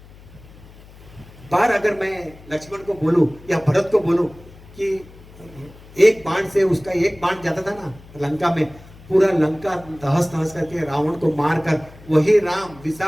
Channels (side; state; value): left; noise; hum, 21 dB below the sound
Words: बार अगर मैं लक्ष्मण को बोलूं या भरत को बोलूं कि एक बाण से उसका एक बाण जाता था ना लंका में, पूरा लंका तहस नहस करके रावण को मारकर वही राम